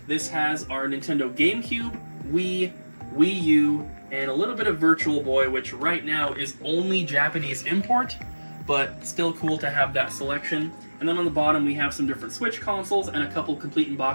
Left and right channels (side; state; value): both; inverted; correlation -1.00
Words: This has our Nintendo GameCube, Wii, Wii U, and a little bit of Virtual Boy, which right now is only Japanese import, but still cool to have that selection. And then on the bottom, we have some different Switch consoles and a couple complete in